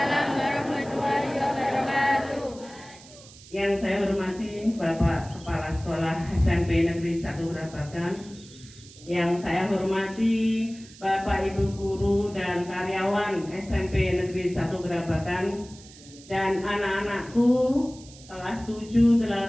warahmatullahi wabarakatuh. Yang saya hormati Bapak Kepala Sekolah SMP Negeri 1 Brabagan, yang saya hormati Bapak Ibu Guru dan karyawan SMP Negeri 1 Brabagan, dan anak-anakku kelas 7,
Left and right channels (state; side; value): noise; right; hiss, 21 dB below the sound